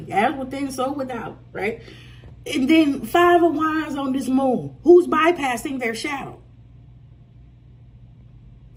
as within, so without, right? And then Five of Wands on this moon. Who's bypassing their shadow?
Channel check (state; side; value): identical; both; correlation 1.00